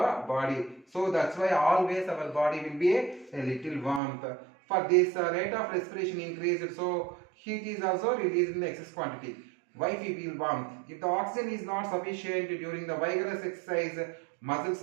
body. So that's why always our body will be a little warmth. For this rate of respiration increased, so heat is also released in the excess quantity. Why we feel warmth? If the oxygen is not sufficient during the vigorous exercise, muscles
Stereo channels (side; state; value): left; drops out; at 4.0 s